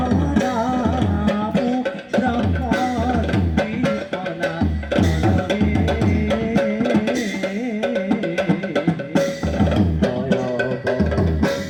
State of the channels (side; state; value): both; identical; correlation 1.00